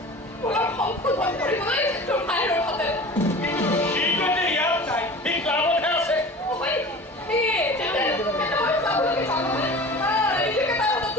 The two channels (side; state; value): both; normal; correlation 0.38